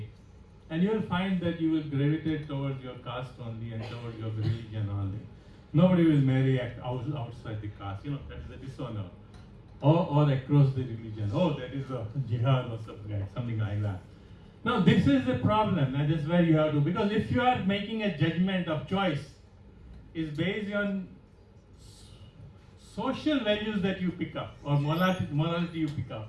And you will find that you will gravitate towards your caste only and towards your religion only. Nobody will marry outside the caste. That is a dishonor. Or across the religion. Oh, that is a jihad or something like that. Now this is the problem, and this is where you have to, because if you are making a judgment of choice, is based on social values that you pick up or morality you pick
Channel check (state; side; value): identical; both; correlation 1.00